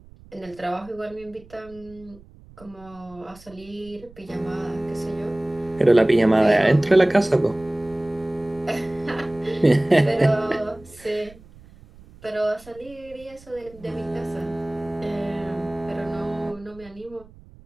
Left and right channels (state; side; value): noise; right; rumble, 23 dB below the sound